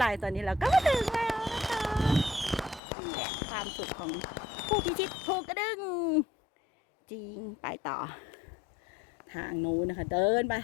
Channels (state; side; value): drops out; right; at 2.8 s